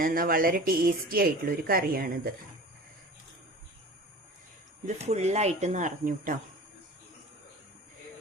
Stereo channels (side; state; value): both; normal; correlation 0.39